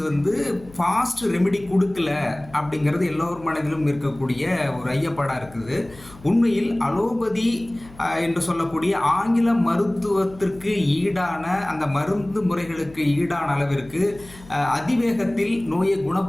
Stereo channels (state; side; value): noise; left; hum, 21 dB below the sound